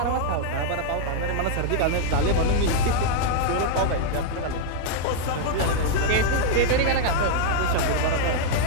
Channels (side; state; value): both; different; correlation -0.01